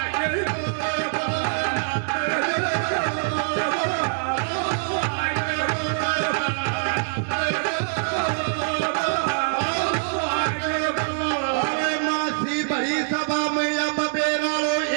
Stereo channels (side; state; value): left; silent; digital silence